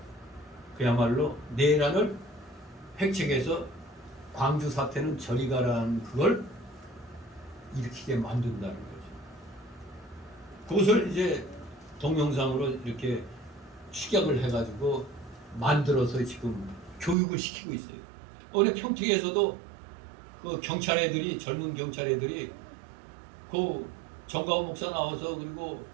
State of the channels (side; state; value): left; drops out; at 17.2 s